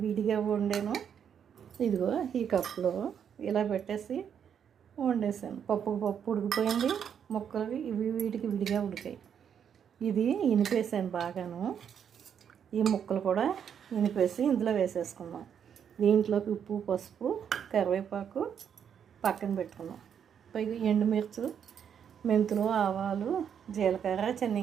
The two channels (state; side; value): quieter; left; 8.1 dB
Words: విడిగా వండాను. ఇదిగో ఈ కప్పులో ఇలా పెట్టేసి వండేసాను. పప్పు ఉడికిపోయింది. ముక్కలు వీటికి విడిగా ఉడికాయి. ఇది ఇనిపేసాను బాగాను. ఈ ముక్కలు కూడా ఇనిపేసి ఇందులో వేసేసుకున్నాం. దీంట్లోకి ఉప్పు, పసుపు, కరివేపాకు పక్కన పెట్టుకున్నాం. పైగా ఎండుమిర్చి, మెంతులు, ఆవాలు, జీలకర్ర,